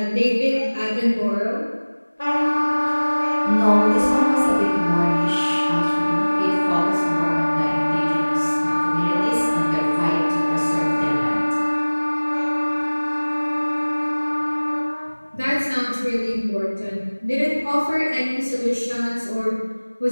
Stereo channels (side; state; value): both; inverted; correlation -1.00